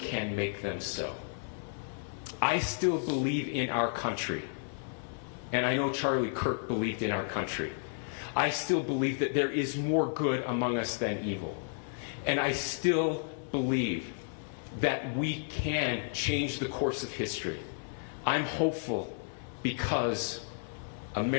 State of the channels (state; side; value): silent; right; 56 dB below the other